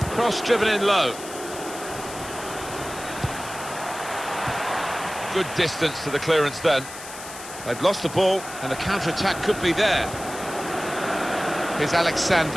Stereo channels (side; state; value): left; noise; hiss, 13 dB below the sound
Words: Cross driven in low. Good distance to the clearance then. They've lost the ball and the counter-attack could be there. Here's